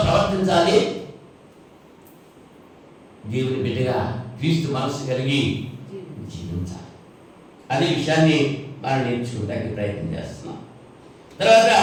ప్రవర్తించాలి? దేవుని బిడ్డగా క్రీస్తు మనసు కలిగి జీవించాలి. అనే విషయాన్ని మనం నేర్చుకోవడానికి ప్రయత్నం చేస్తున్నాం. తర్వాత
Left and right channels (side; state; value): both; identical; correlation 1.00